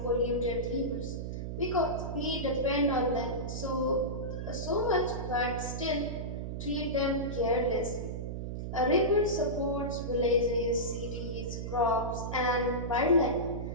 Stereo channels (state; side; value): noise; right; hum, 5 dB below the sound